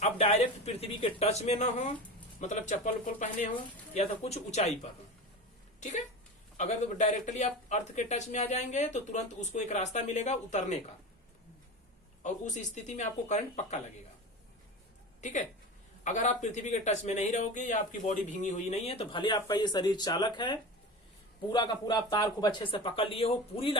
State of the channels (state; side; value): normal; both; correlation 0.29